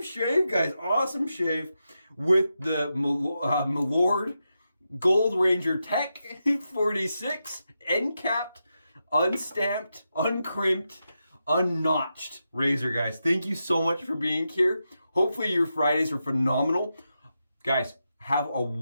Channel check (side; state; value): both; inverted; correlation -0.87